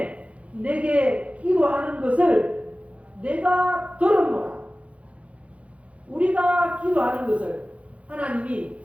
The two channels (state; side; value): late; left; 0.063 ms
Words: 내게 기도하는 것을 내가 들었노라. 우리가 기도하는 것을 하나님이